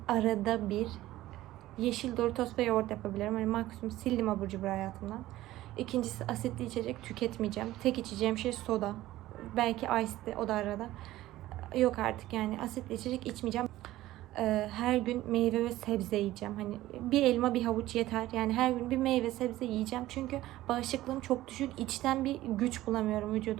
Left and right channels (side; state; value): left; quieter; 15.7 dB